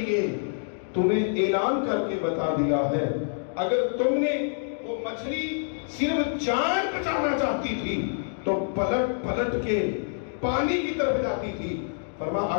تمہیں اعلان کر کے بتا دیا ہے۔ اگر تم نے وہ مچھلی صرف جان بچانا چاہتی تھی تو پلٹ پلٹ کے پانی کی طرف جاتی تھی۔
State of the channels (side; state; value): right; silent; digital silence